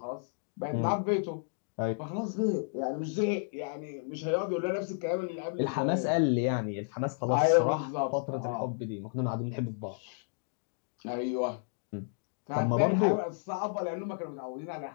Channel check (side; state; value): right; silent; digital silence